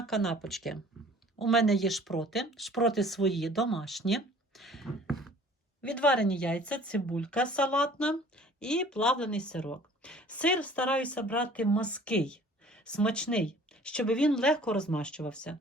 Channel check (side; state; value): both; normal; correlation 0.50